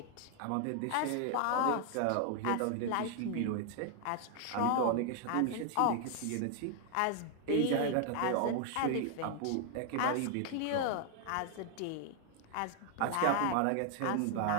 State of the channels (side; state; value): both; different; correlation 0.00